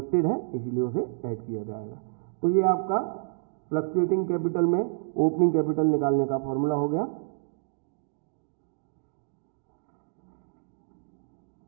है, इसीलिए उसे ऐड किया जाएगा। तो ये आपका फ्लक्चुएटिंग कैपिटल में ओपनिंग कैपिटल निकालने का फॉर्मूला हो गया।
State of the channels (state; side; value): silent; left; digital silence